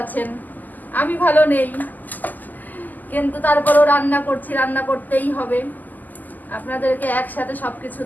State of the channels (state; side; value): late; right; 0.084 ms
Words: আছেন। আমি ভালো নেই, কিন্তু তারপরেও রান্না করছি, রান্না করতেই হবে। আপনাদেরকে একসাথে সব কিছু